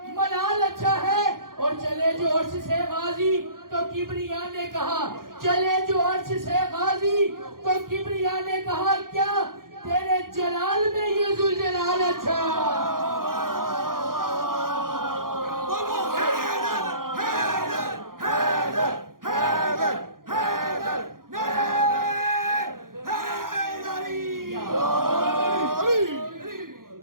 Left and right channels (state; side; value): late; left; 0.91 ms